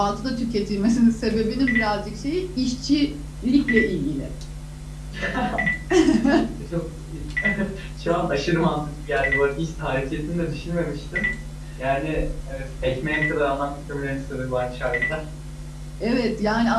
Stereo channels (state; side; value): identical; both; correlation 1.00